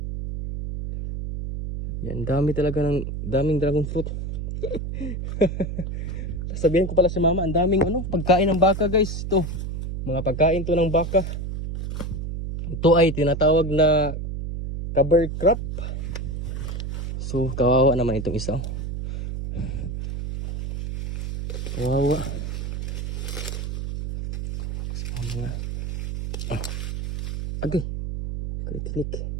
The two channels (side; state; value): right; noise; hum, 5 dB below the sound